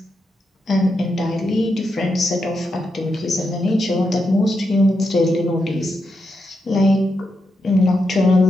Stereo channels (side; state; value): both; normal; correlation 0.84